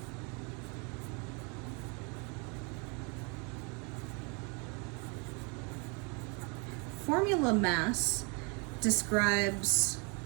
formula mass describes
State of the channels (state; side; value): quieter; left; 32.9 dB